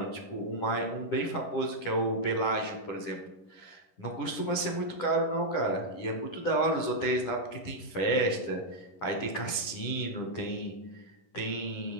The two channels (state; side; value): late; right; 10 ms